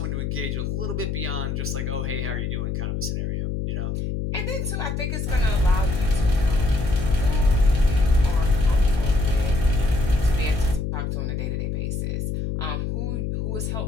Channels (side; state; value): left; noise; hum, 2 dB below the sound